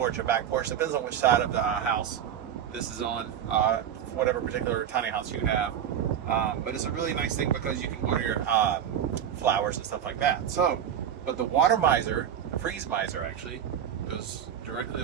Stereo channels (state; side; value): quieter; left; 9.3 dB